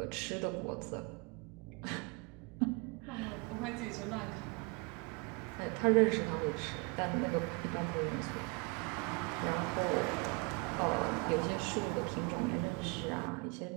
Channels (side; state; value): left; quieter; 29.2 dB